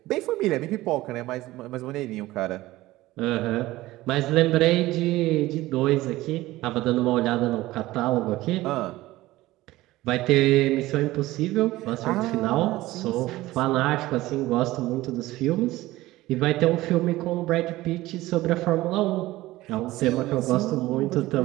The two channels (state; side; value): quieter; left; 17.5 dB